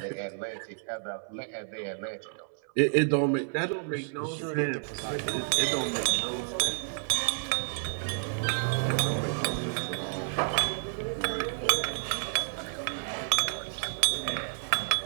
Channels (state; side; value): silent; left; 58 dB below the other